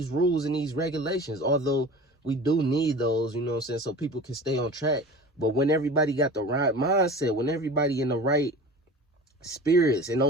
rules and these regulations, although we do need those, you know what I'm saying, so people can stay on track. But when everybody got the right mindset, when everybody in the right spirits and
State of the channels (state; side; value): normal; both; correlation 0.38